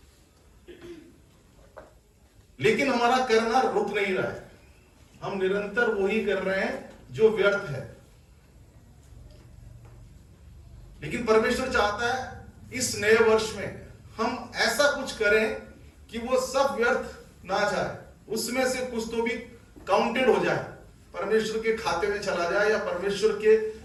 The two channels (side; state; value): both; identical; correlation 1.00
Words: लेकिन हमारा करना रुक नहीं रहा है, हम निरंतर वही कर रहे हैं जो व्यर्थ है। लेकिन परमेश्वर चाहता है इस नए वर्ष में हम ऐसा कुछ करें कि वो सब व्यर्थ ना जाए, उसमें से कुछ तो भी काउंटेड हो जाए, परमेश्वर के खाते में चला जाए या परमेश्वर के